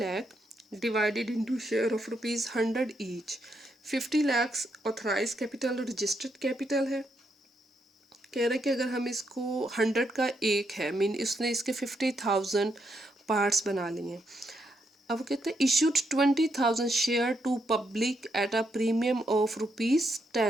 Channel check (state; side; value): normal; both; correlation 0.79